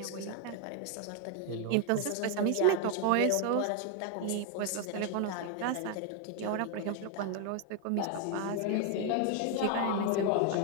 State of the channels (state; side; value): different; both; correlation 0.01